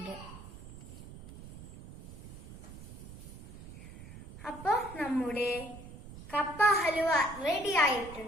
അപ്പൊ നമ്മുടെ കപ്പ ഹലുവ റെഡി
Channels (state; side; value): noise; right; rumble, 14 dB below the sound